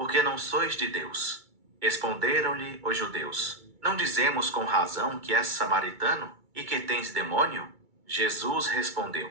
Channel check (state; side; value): late; left; 2.2 ms